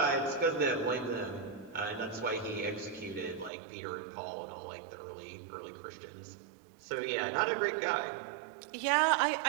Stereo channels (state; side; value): drops out; left; at 3.5 s